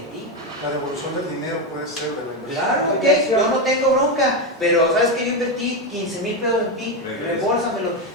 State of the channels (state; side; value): normal; both; correlation 0.10